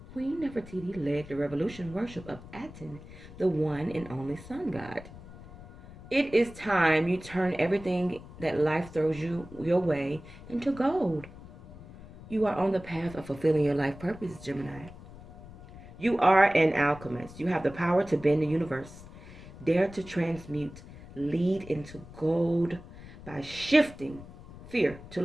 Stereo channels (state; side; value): noise; left; rumble, 17 dB below the sound